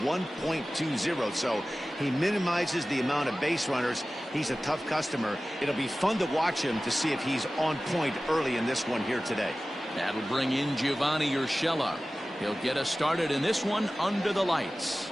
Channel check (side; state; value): both; normal; correlation 0.96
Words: so he minimizes the amount of base runners. He's a tough customer. It'll be fun to watch him to see if he's on point early in this one here today. That'll bring in Giovanni Urshela. He'll get us started in this one under the lights.